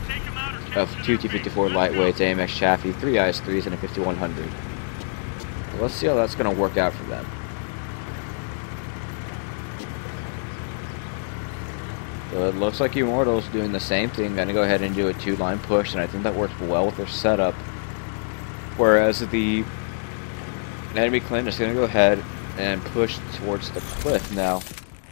of 2 T-54 lightweights, AMX Chaffee, 3 IS-3s, and a 5100. Let's see how that's going to work out for them. So it looks like Immortals doing the same thing, going to go ahead and do a 2-line push, and I think that works well with their setup. Whereas the enemy clan is going to go ahead and push towards the cliff. Now,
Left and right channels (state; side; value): silent; right; digital silence